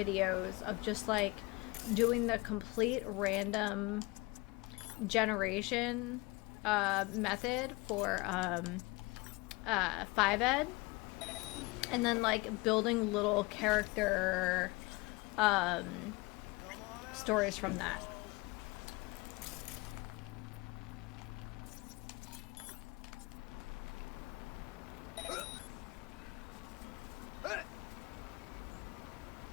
of just, like, doing the complete random generation method for 5ed, and then like building little character stories from that.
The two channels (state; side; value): quieter; right; 23.9 dB